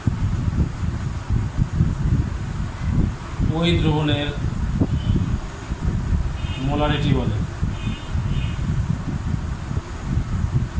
ওই দ্রবণের মোলারিটি বলে।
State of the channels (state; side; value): identical; both; correlation 1.00